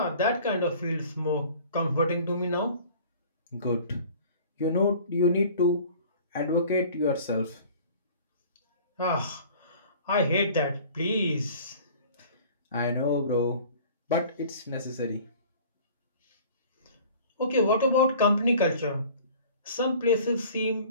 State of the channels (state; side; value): inverted; both; correlation -0.47